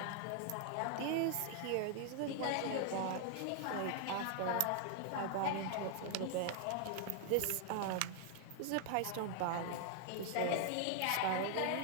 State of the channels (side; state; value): both; different; correlation 0.00